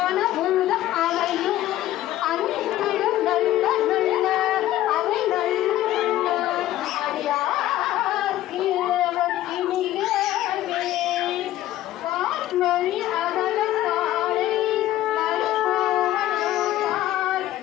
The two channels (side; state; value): right; quieter; 14.2 dB